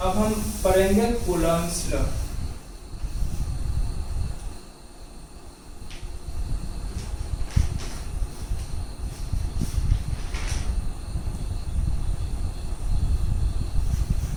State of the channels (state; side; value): identical; both; correlation 1.00